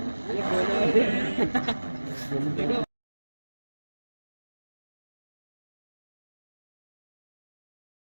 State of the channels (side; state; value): both; inverted; correlation -1.00